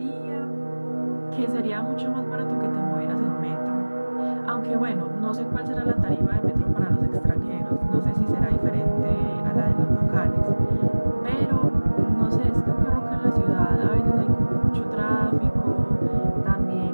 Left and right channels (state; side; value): inverted; both; correlation -1.00